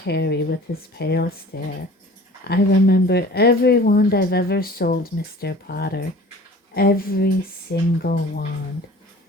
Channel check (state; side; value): normal; both; correlation 0.44